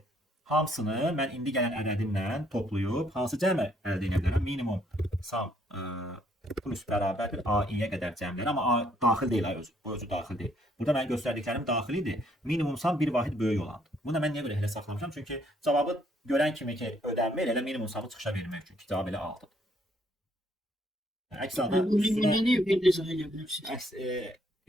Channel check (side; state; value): both; normal; correlation 0.68